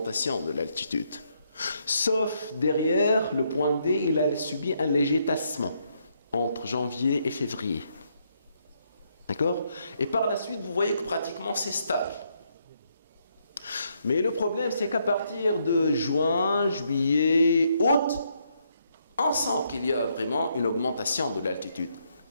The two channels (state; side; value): inverted; both; correlation -0.75